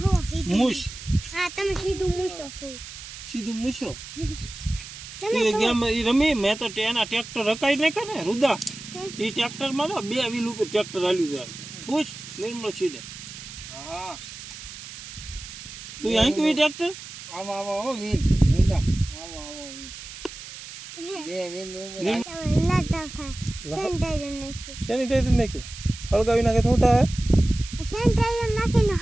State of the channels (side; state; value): right; noise; hiss, 13 dB below the sound